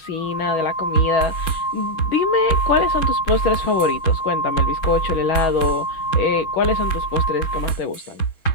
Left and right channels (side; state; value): right; late; 6.2 ms